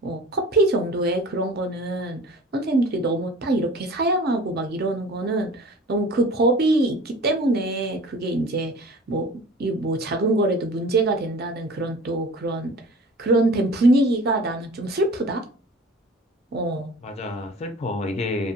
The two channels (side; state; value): both; normal; correlation 0.43